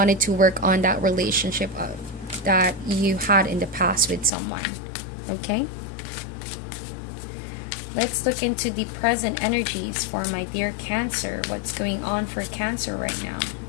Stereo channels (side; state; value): right; drops out; at 4.3 s